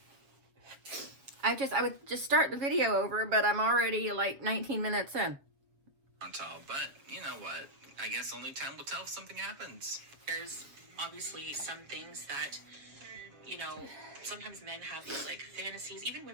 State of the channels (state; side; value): late; left; 7.1 ms